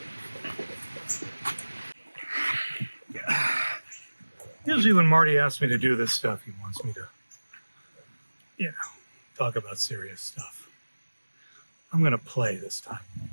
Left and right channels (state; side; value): inverted; both; correlation -1.00